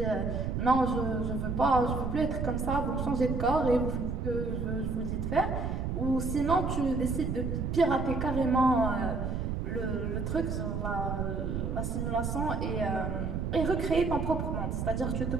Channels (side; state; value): right; noise; rumble, 2 dB below the sound